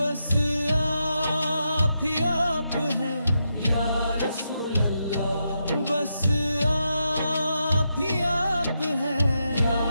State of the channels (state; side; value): inverted; both; correlation -0.84